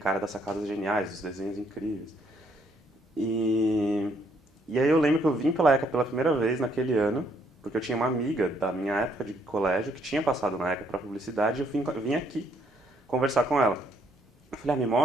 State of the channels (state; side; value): normal; both; correlation 0.69